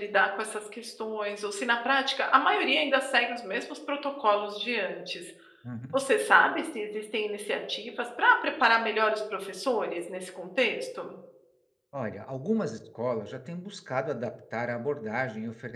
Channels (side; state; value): both; identical; correlation 1.00